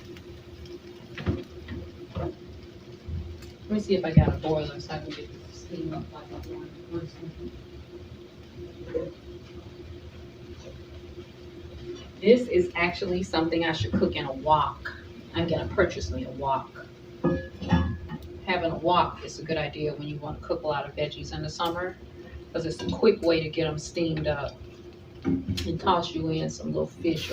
Let me see if I got a boiler so I can get the steam up like I want. One second. This is actually something I should cook in a wok. I'm gonna purchase me a wok. Having a wok is a good idea when you want to cook a lot of veggies in the summer because it's a quick way to get them steamed up and toss you in some little fish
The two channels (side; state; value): both; identical; correlation 1.00